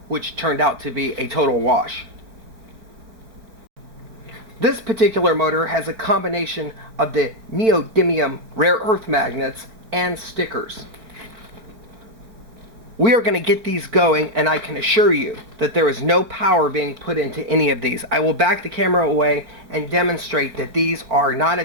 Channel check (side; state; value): left; late; 4.6 ms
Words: which turned out to be a total wash. This particular motor has a combination of the neodymium rare earth magnets and stickers. We are going to get these going, and I can assure you that there is no power being put into any of these. I will back the camera away and demonstrate that these are not